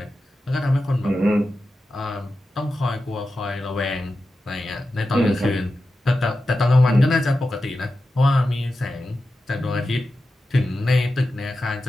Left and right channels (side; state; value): both; normal; correlation 0.92